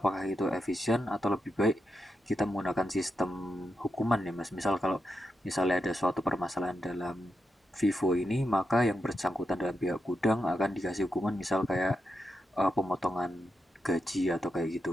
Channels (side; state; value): both; normal; correlation 0.85